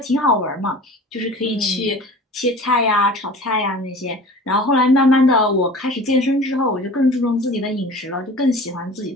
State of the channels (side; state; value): both; normal; correlation 0.41